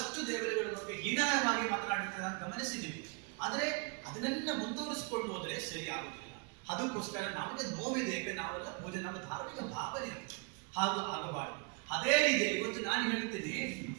ದೇವರುಗಳ ಬಗ್ಗೆ ಹೀನಾಯವಾಗಿ ಮಾತನಾಡುತ್ತಾರೆ ಗಮನಿಸಿದ್ದೀವಿ. ಆದ್ರೆ ಅದನ್ನೆಲ್ಲ ಮುಂದುವರಿಸಿಕೊಂಡು ಹೋದ್ರೆ ಸರಿ ಆಗುದಿಲ್ಲ. ಅದಕ್ಕೋಸ್ಕರ ನಮಗೆ ನೋವಿದೆ. ಯಾಕೆ ನಾವೆಲ್ಲ ಪೂಜೆ, ನಮ್ಮ ಧಾರ್ಮಿಕ ಭಾವನೆ ಹಾಗೆ ಆಗಬಾರದು. ಅದೇ ರೀತಿಯಲ್ಲಿ ಇವತ್ತು ನಾನು ಹೇಳ್ತೀನಿ,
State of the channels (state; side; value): quieter; left; 33.2 dB